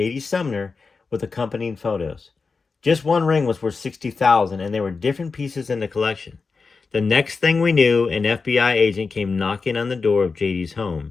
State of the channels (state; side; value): quieter; right; 4.6 dB